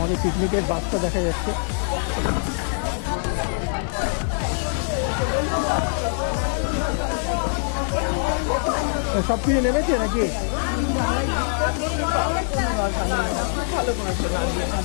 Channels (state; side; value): silent; right; 63 dB below the other